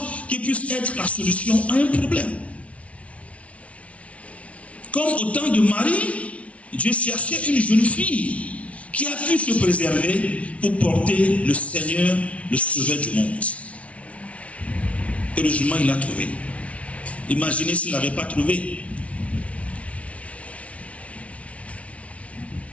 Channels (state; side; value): late; right; 0.064 ms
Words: qui puisse être la solution à un problème. Comme au temps de Marie, Dieu cherchait une jeune fille qui a pu se préserver pour porter le Seigneur, le Sauveur du monde. Heureusement, il l'a trouvé. Imaginez s'il ne l'avait pas trouvé.